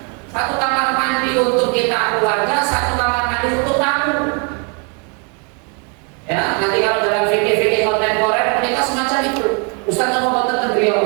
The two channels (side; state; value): left; quieter; 36.5 dB